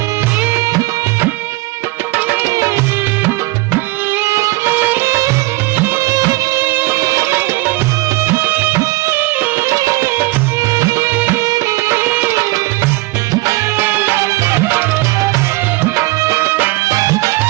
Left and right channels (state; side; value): quieter; left; 21.5 dB